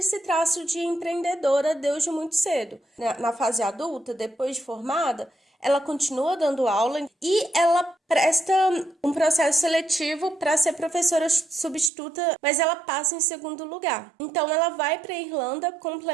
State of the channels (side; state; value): left; drops out; at 11.9 s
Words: traço de empreendedora desde muito cedo. Na fase adulta, depois de formada, ela continua dando aula e ela presta um processo seletivo para ser professora substituta, mas ela passa em segundo lugar. Então ela vai para a Irlanda